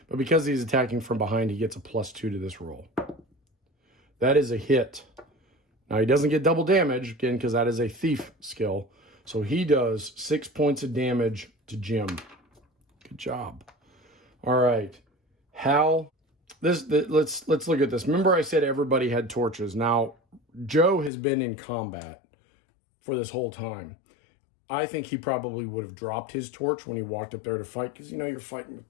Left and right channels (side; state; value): right; drops out; at 21.1 s